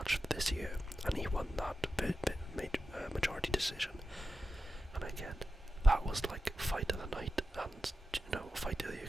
of this year, and he won that majority decision. And again, that was like fight of the night and fight of the year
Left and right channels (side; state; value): both; normal; correlation 0.92